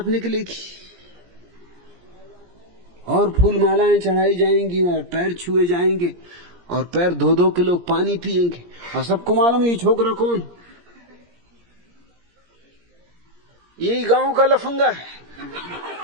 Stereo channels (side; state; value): left; late; 17 ms